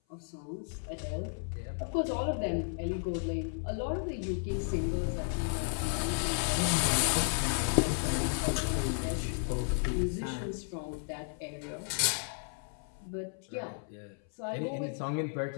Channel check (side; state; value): right; silent; 55 dB below the other